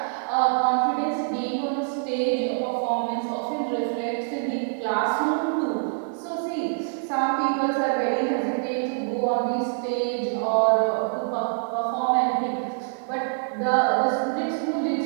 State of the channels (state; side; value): silent; left; digital silence